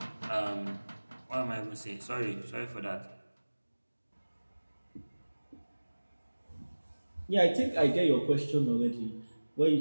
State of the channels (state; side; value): inverted; both; correlation -1.00